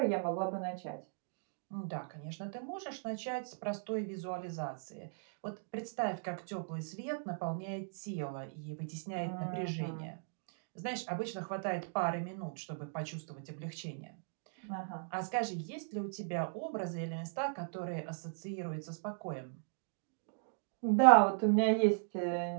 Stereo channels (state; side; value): silent; left; digital silence